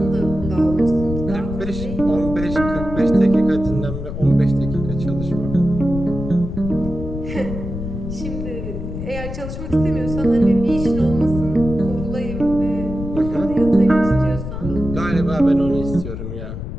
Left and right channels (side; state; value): left; noise; rumble, 7 dB below the sound